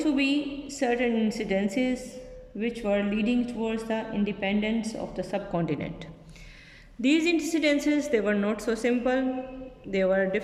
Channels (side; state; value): both; identical; correlation 1.00